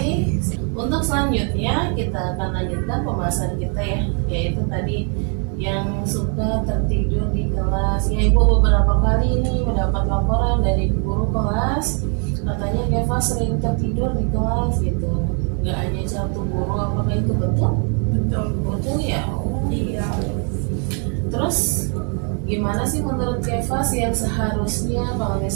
Untuk selanjutnya kita akan lanjutkan pembahasan kita ya, yaitu tadi yang suka tertidur di kelas. Ya, Ibu beberapa kali ini mendapat laporan dari guru kelas, katanya Keva sering tertidur di kelas gitu. Nggak hanya satu guru, apakah itu betul? Betul. Betul ya? Oh, Iya. Terus gimana sih menurut Kevas yang seharusnya kalau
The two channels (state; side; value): quieter; left; 39.9 dB